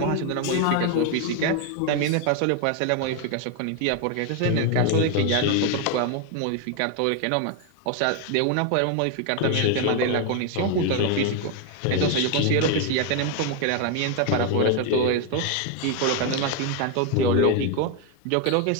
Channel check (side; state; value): both; different; correlation 0.01